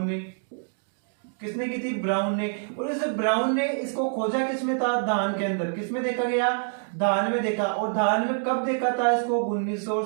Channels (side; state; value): left; silent; digital silence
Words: ने। किसने की थी? ब्राउन ने। और इस ब्राउन ने इसको खोजा किसमें था? धान के अंदर। किसमें देखा गया? धान में देखा। और धान में कब देखा था इसको?